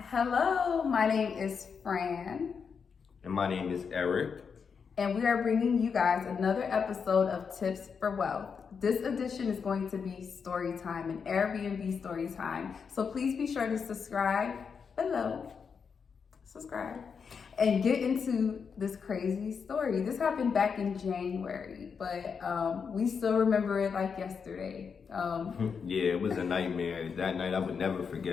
Hello, my name is Fran. And my name is Eric. And we are bringing you guys another episode of Tips for Wealth. This edition is going to be story time, an Airbnb story time. So please be sure to subscribe below. Subscribe. And get into this crazy story. This happened back in January, but we still remember it like yesterday. Yeah, it was a nightmare. That night I would never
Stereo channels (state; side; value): quieter; right; 6.1 dB